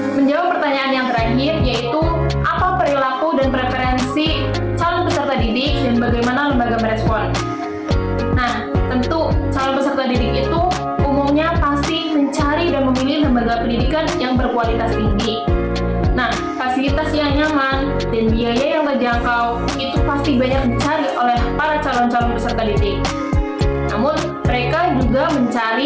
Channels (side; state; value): both; identical; correlation 1.00